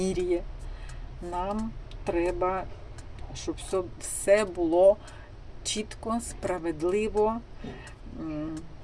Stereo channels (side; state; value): both; identical; correlation 1.00